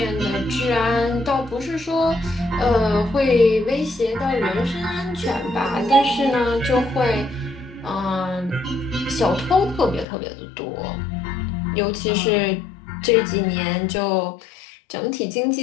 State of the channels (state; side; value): drops out; right; at 10.1 s